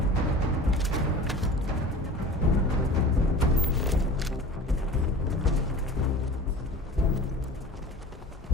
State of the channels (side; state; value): both; normal; correlation 0.39